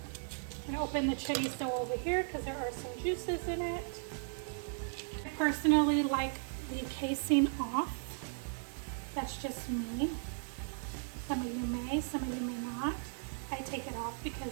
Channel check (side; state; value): left; silent; digital silence